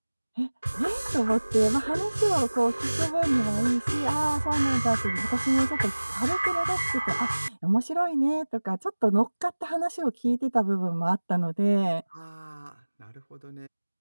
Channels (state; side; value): inverted; both; correlation -1.00